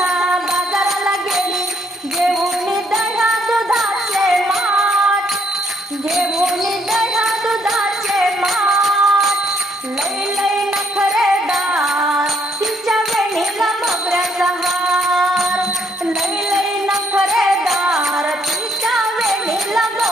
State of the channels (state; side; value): normal; both; correlation 0.69